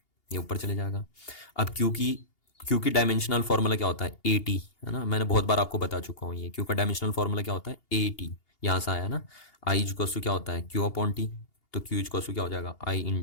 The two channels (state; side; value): late; right; 2.8 ms